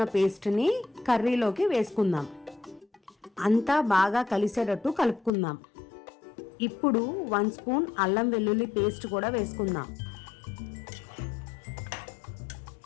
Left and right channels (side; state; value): right; drops out; at 5.3 s